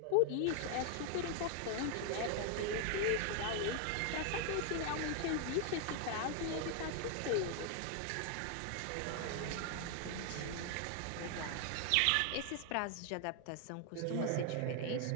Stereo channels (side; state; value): both; different; correlation 0.00